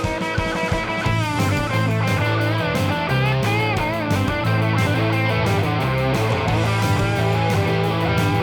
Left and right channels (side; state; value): both; identical; correlation 1.00